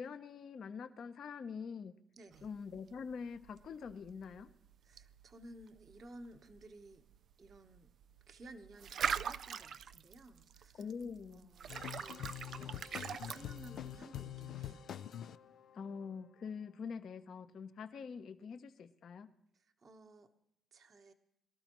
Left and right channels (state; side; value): normal; both; correlation 0.70